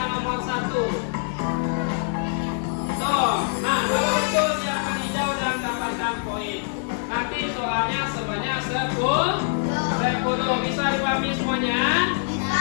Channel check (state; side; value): silent; right; 62 dB below the other